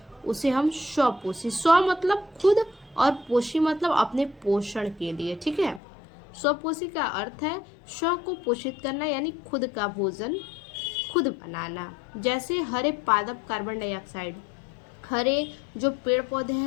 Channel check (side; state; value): right; drops out; at 5.8 s